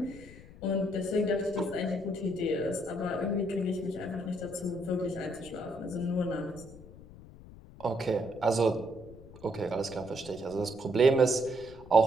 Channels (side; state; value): left; noise; rumble, 18 dB below the sound